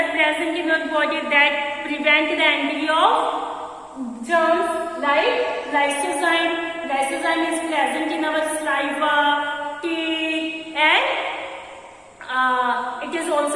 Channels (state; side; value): identical; both; correlation 1.00